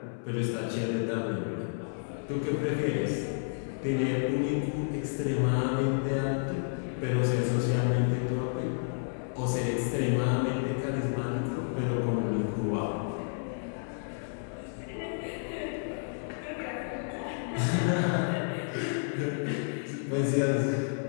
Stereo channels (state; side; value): silent; right; 57 dB below the other